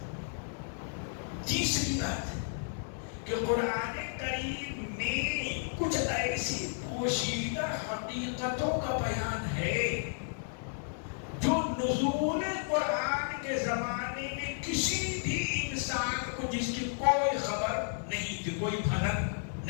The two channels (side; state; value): right; silent; digital silence